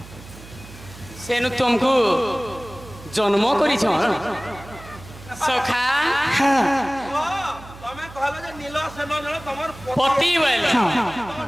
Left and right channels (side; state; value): right; noise; hum, 18 dB below the sound